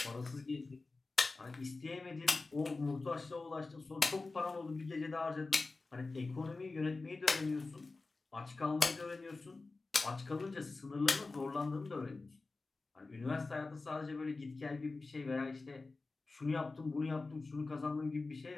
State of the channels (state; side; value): quieter; right; 3.6 dB